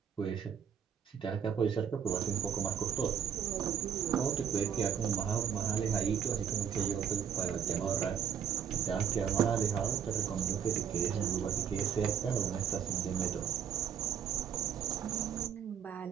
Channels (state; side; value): quieter; left; 8.0 dB